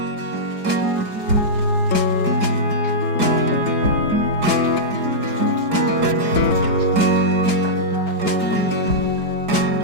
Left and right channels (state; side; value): late; left; 4.9 ms